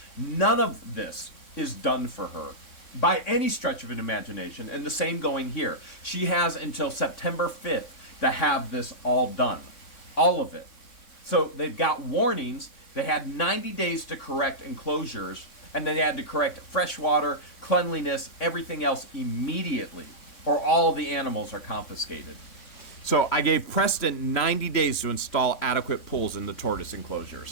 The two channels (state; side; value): late; right; 3.6 ms